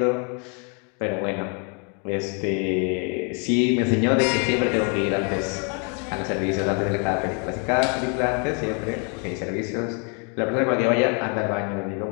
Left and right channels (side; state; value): right; quieter; 36.6 dB